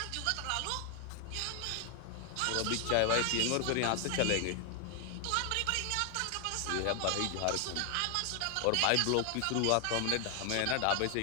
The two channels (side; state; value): both; different; correlation 0.00